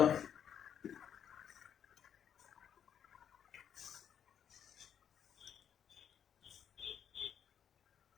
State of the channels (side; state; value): right; quieter; 8.6 dB